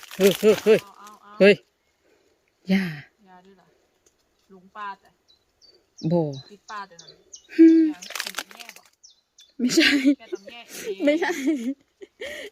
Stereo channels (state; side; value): identical; both; correlation 1.00